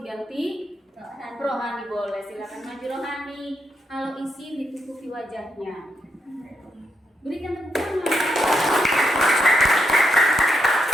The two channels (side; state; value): both; normal; correlation 0.80